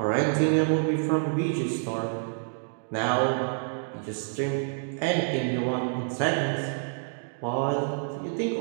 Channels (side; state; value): left; silent; digital silence